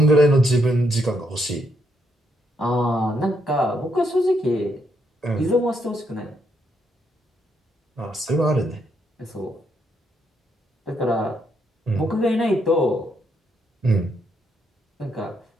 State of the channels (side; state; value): both; normal; correlation 0.76